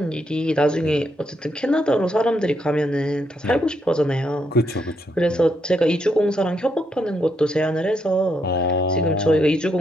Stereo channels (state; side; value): normal; both; correlation 0.78